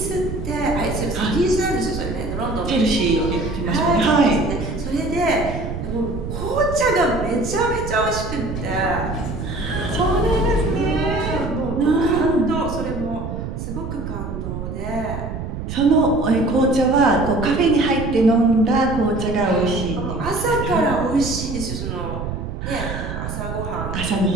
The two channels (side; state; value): right; noise; rumble, 6 dB below the sound